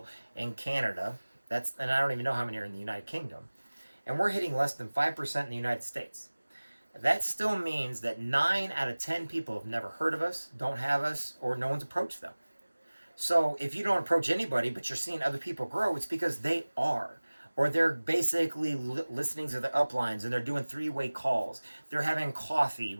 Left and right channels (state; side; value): inverted; both; correlation -1.00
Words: in Canada. And I don't even know how many are in the United Kingdom. And we're hitting less than 5% in the United States. That still means that 9 out of 10 people have never heard of us, don't have us, or no one's approached them. So if you don't approach anybody, but you're seeing other people grow, it's because they are. Or they're basically listening to the uplines, and they're doing three-way calls. They're having coffee